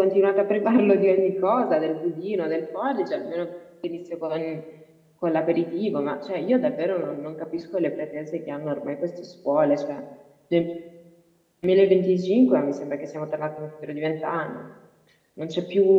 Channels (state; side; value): identical; both; correlation 1.00